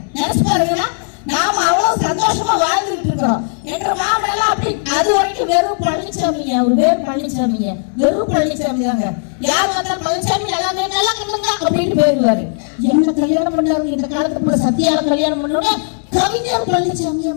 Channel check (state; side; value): silent; right; 67 dB below the other